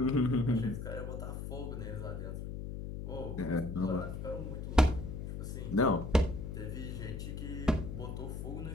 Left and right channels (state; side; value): noise; left; hum, 6 dB below the sound